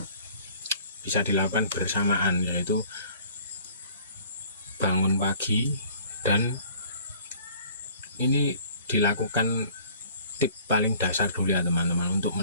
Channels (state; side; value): inverted; both; correlation -0.52